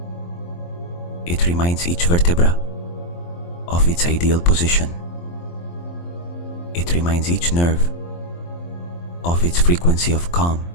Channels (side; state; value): right; late; 23 ms